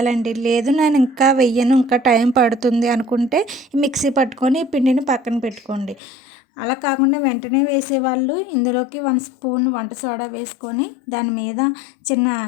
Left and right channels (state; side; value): drops out; right; at 6.0 s